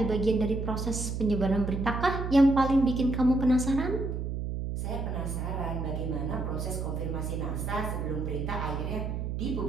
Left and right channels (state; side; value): noise; right; hum, 3 dB below the sound